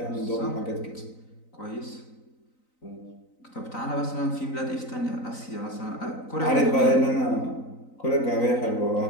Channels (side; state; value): right; late; 3.9 ms